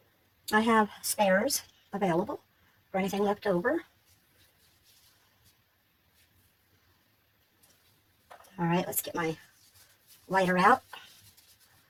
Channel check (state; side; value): identical; both; correlation 1.00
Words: I have spares available for anything left over. All right, let's get my lighter out.